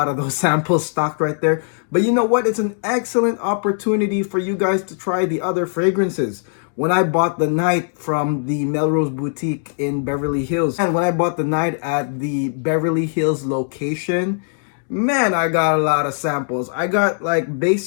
of those samples stocked right there. But you know what? It's an excellent opportunity for you guys to try the other fragrances. When I bought the Night from the Melrose boutique in Beverly Hills, and when I bought the Night at the Beverly Hills location, man, I got a lot of samples. I got like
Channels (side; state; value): right; silent; digital silence